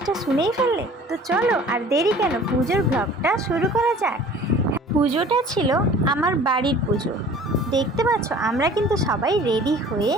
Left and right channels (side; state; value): both; normal; correlation 0.47